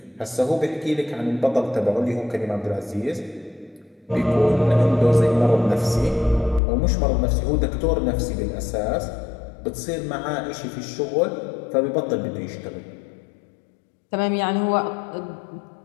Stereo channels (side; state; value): right; drops out; at 6.6 s